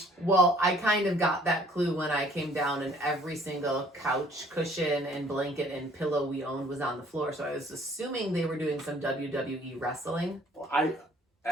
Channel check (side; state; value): both; normal; correlation 0.58